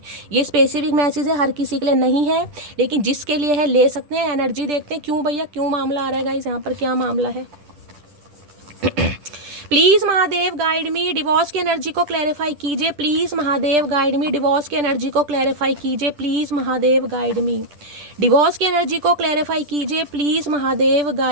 ये स्पेसिफिक मैसेज है, हर किसी के लिए नहीं है, लेकिन जिसके लिए है ले सकते हैं। एनर्जी देखते हैं क्यों भैया, क्यों मामला आ रहा है गाइस, यहाँ पर क्या मामला है। Please Mahadev guide me. Divorce की एनर्जी को क्लैरिफाई कीजिए please Mahadev guide me. Divorce की एनर्जी को क्लैरिफाई कीजिए please Mahadev guide me. Divorce की एनर्जी को क्लैरिफाई कीजिए please Mahadev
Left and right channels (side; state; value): left; late; 10 ms